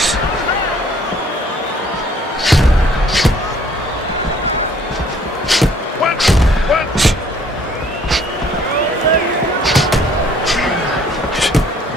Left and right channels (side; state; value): both; normal; correlation 0.59